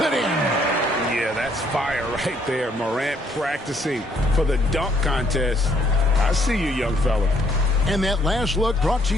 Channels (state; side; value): normal; both; correlation 0.67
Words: in. Yeah, that's fire right there. Morant practicing for the dunk contest. I see you, young fella. And that last look brought to